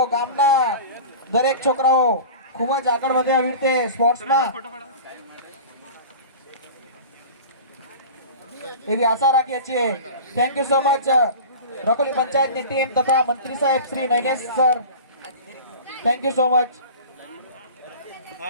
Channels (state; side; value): inverted; both; correlation -0.36